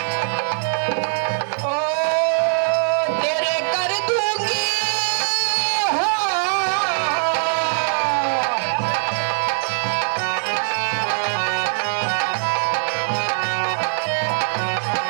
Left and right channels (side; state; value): left; silent; digital silence